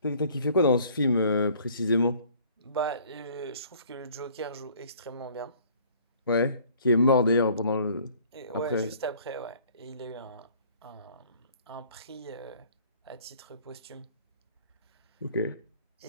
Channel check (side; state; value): both; inverted; correlation -0.55